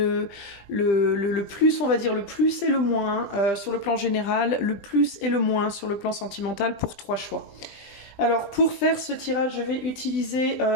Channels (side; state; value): right; late; 20 ms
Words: plus, on va dire le plus et le moins sur le plan général, le plus et le moins sur le plan sentimental pour 3 choix. Alors pour faire ce tirage, je vais utiliser